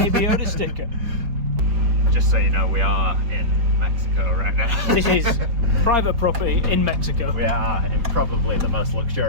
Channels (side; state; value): left; late; 4.6 ms